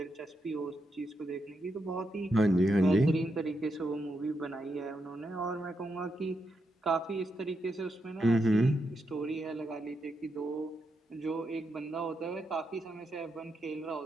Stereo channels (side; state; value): both; normal; correlation 0.83